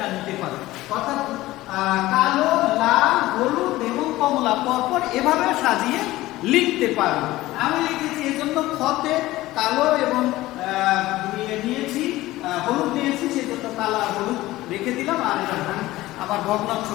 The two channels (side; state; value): right; quieter; 17.2 dB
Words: নিতে পারো। অর্থাৎ কালো, লাল, হলুদ এবং কমলা পরপর এভাবে সাজিয়ে লিখতে পারো। আমি লিখেছি এজন্য খতে কালো এবং নিয়েছি, হলুদ নিয়েছি, সেজন্য কালো আর হলুদ রেখে দিলাম। আর এটা আমার ভগ্নাংশ